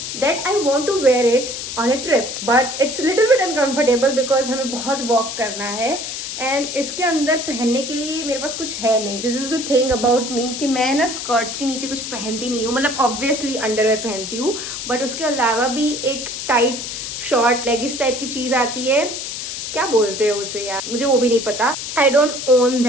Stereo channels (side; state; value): left; noise; hiss, 6 dB below the sound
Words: that I want to wear it on a trip. But it's little bit uncomfortable because हमें बहुत वॉक करना है एंड इसके अंदर पहनने के लिए मेरे पास कुछ है नहीं. This is the thing about me कि मैं ना स्कर्ट्स के नीचे कुछ पहनती नहीं हूँ. मतलब ऑब्वियसली अंडरवेयर पहनती हूँ बट उसके अलावा भी एक टाइट शॉर्ट लेगिस टाइप की चीज आती है, क्या बोलते हैं उसे यार, मुझे वो भी नहीं पता. I don't own